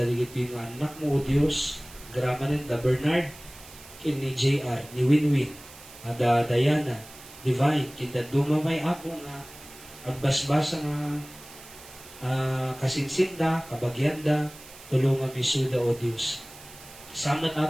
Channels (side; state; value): right; noise; hiss, 19 dB below the sound